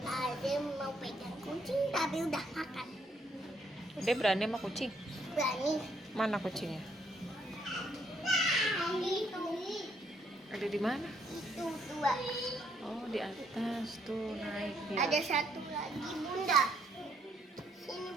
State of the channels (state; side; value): normal; both; correlation 0.71